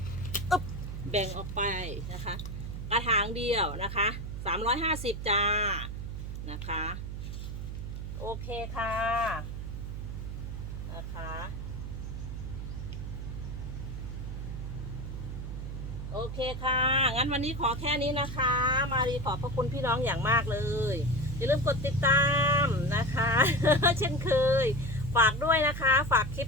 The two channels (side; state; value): right; noise; hum, 6 dB below the sound